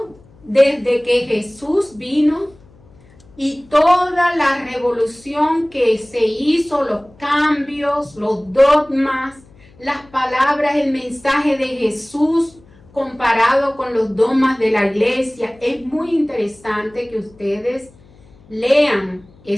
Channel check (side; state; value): left; noise; hum, 27 dB below the sound